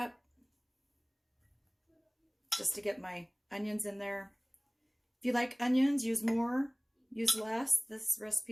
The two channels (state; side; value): identical; both; correlation 1.00